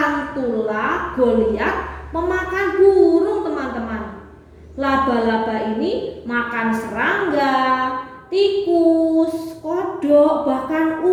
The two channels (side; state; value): both; identical; correlation 1.00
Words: goliath pemakan burung teman-teman. Laba-laba ini makan serangga, tikus, kodok, bahkan